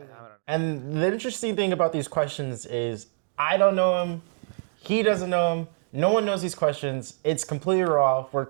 And the interesting thing about these questions is I don't know him, he doesn't know him, no one knows these questions. It's completely raw. We're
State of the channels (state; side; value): silent; left; 61 dB below the other